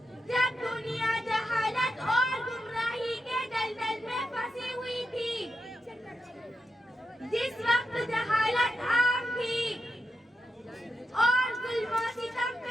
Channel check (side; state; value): both; normal; correlation 0.87